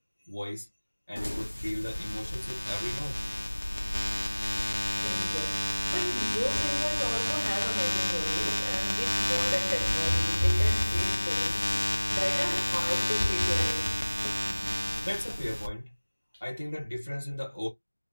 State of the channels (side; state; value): both; inverted; correlation -1.00